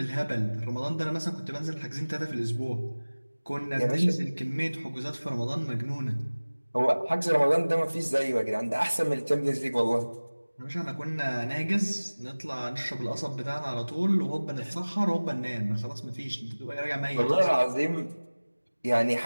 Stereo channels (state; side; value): inverted; both; correlation -1.00